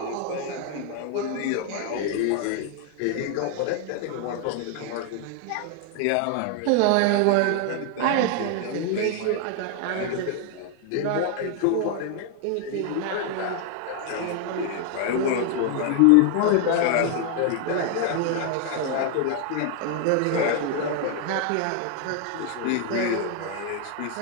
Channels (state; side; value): different; both; correlation 0.00